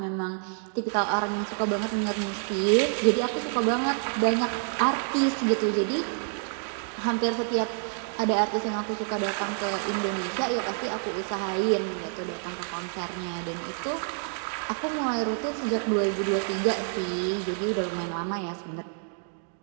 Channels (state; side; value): silent; left; 59 dB below the other